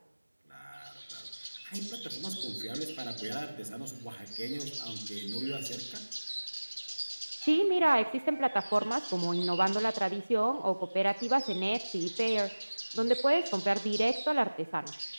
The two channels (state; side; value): inverted; both; correlation -1.00